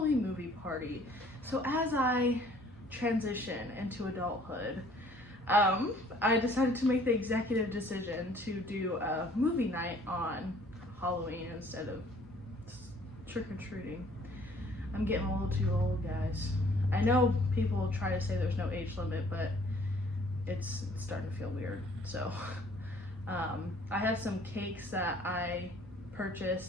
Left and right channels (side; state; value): both; normal; correlation 0.57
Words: movie party. So as I transition into adulthood, I decided to make the executive decision to do a movie night on Halloween instead of trick-or-treating. I'm getting a little too old, guys. I know people try to say there's no age limit, but it's starting to feel weird. So I have some cakes that I